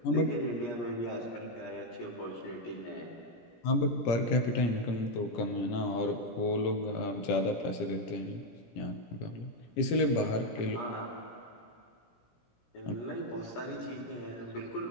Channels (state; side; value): late; right; 17 ms